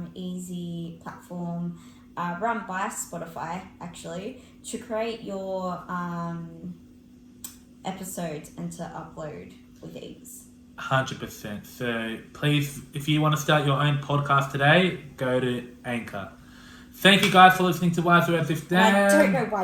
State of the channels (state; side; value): identical; both; correlation 1.00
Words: easy platform run by Spotify, actually, to create your episodes and to upload with ease. 100%. So please, if you want to start your own podcast today, go to Anchor. Thank you guys for listening to Wise Words with Dan. I don't know why